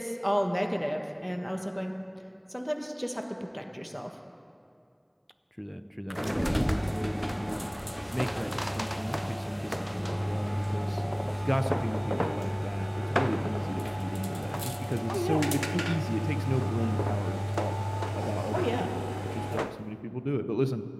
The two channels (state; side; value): identical; both; correlation 1.00